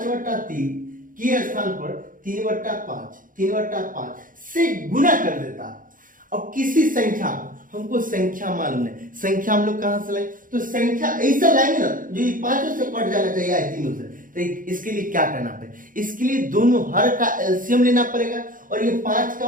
के स्थान पर 3/5 से गुना कर देता है। अब किसी संख्या, हमको संख्या मालूम है, संख्या हम लोग कहां से लाएंगे, तो संख्या ऐसा लाएंगे ना जो 5 से कट जाना चाहिए या 3 से। तो इसके लिए क्या करना पड़ेगा, इसके लिए दोनों हर का एलसीएम लेना पड़ेगा, और ये 5 का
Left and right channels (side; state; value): left; late; 0.40 ms